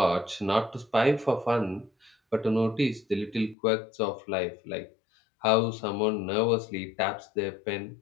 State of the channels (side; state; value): right; drops out; at 3.6 s